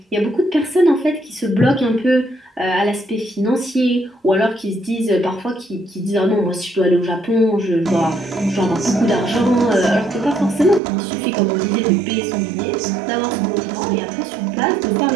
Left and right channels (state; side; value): drops out; left; at 10.8 s